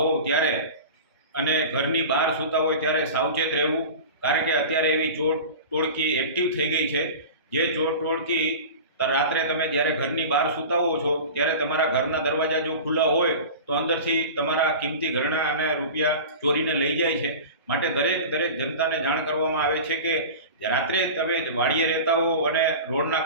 ત્યારે અને ઘરની બહાર સૂતા હોય ત્યારે સાવચેત રહેવું, કારણ કે અત્યારે એવી ચોર ટોળકી એક્ટિવ થઈ ગઈ છે. જે ચોર ટોળકી રાત્રે તમે જ્યારે ઘરની બહાર સૂતા હો છો ત્યારે તમારા ઘરના દરવાજા જો ખુલ્લા હોય તો અંદરથી તમારા કિંમતી ઘરેણાં અને રૂપિયા ચોરીને લઈ જાય છે. માટે દરેક જનતાને જાણ કરવામાં આવે છે કે રાત્રે તમે વાડીએ રહેતા હો અને રોડના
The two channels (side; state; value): both; inverted; correlation -0.34